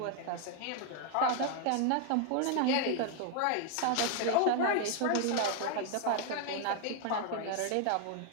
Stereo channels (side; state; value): both; different; correlation 0.00